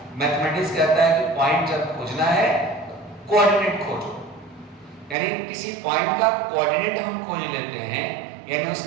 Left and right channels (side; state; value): left; drops out; at 5.2 s